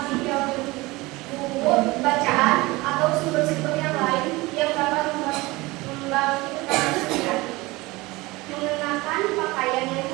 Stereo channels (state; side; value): quieter; left; 21.6 dB